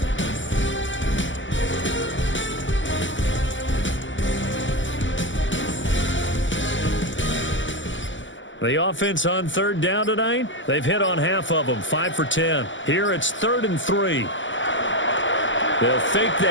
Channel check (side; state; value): right; late; 0.55 ms